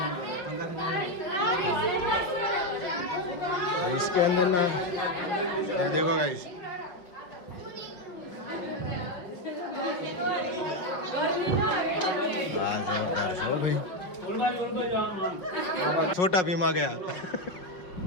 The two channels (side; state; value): right; late; 5.5 ms